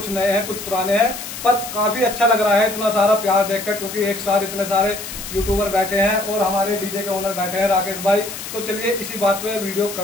नए हैं कुछ पुराने हैं, पर काफी अच्छा लग रहा है इतना सारा प्यार देखकर, क्योंकि एक साथ इतने सारे यूट्यूबर बैठे हैं और हमारे डीजे के ओनर बैठे हैं राकेश भाई। तो चलिए इसी बात पे वीडियो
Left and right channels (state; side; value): noise; left; hiss, 9 dB below the sound